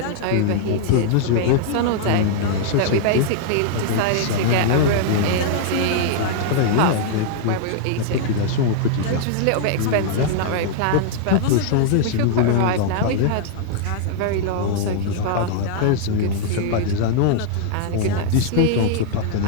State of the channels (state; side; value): different; both; correlation -0.01